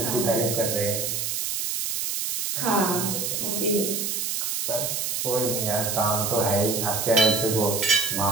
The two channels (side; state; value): right; noise; hiss, 1 dB below the sound